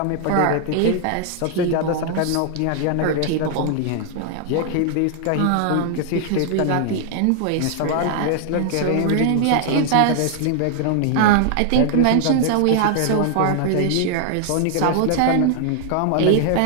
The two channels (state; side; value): different; both; correlation 0.00